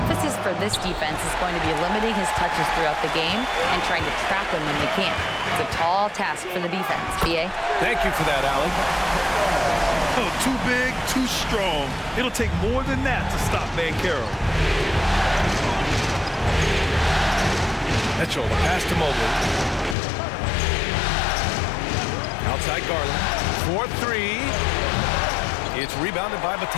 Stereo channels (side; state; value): right; drops out; at 20.0 s